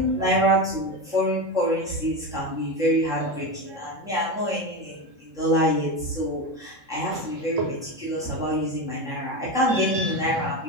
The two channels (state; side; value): late; left; 3.7 ms